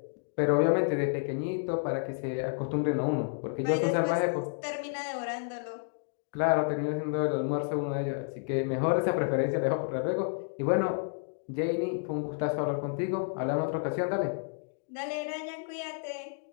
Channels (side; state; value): right; silent; digital silence